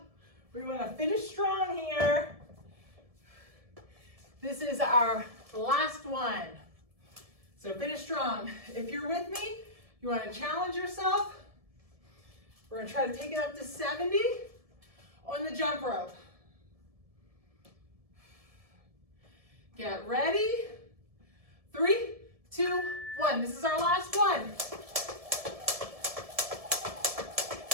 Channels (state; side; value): late; left; 1.7 ms